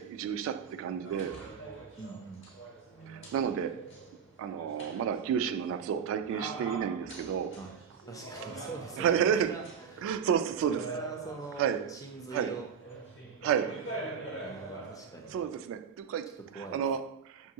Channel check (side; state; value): left; quieter; 7.4 dB